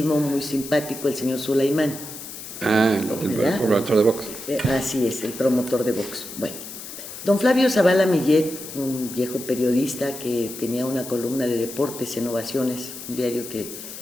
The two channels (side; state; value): left; noise; hiss, 11 dB below the sound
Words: muy simpático, el señor Sulaimán. El ¿Verdad? promotor de box. Así es, el promotor de Vox. Bueno, don Flavio Zavala Millet, un viejo periodista que tenía una columna de deportes en Ovaciones, un diario que